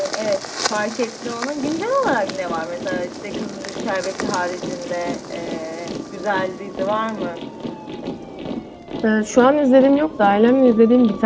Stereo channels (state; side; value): identical; both; correlation 1.00